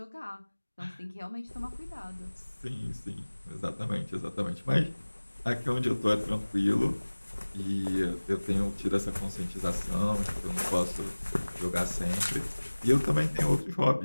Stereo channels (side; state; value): both; inverted; correlation -1.00